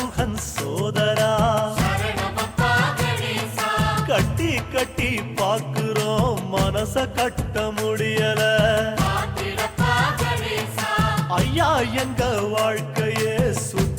சோதரா சரணமப்பா கணேசா கட்டி கட்டி பாக்குறோம் மனச கட்ட முடியல காத்திடப்பா கணேசா ஐயா எங்க வாழ்க்கையே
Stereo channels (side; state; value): both; identical; correlation 1.00